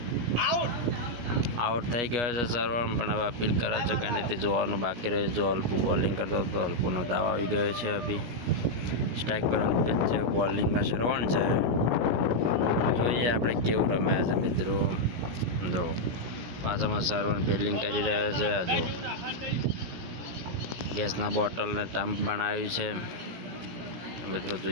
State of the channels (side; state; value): left; late; 17 ms